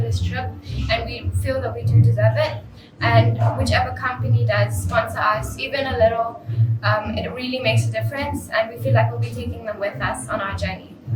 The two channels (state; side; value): identical; both; correlation 1.00